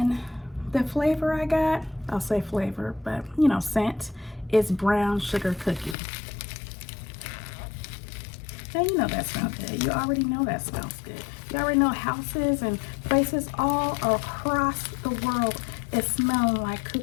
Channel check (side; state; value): right; drops out; at 6.0 s